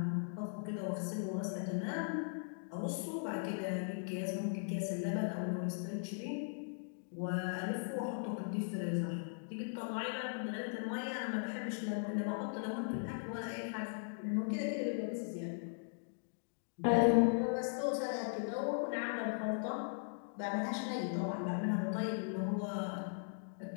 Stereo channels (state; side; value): silent; right; digital silence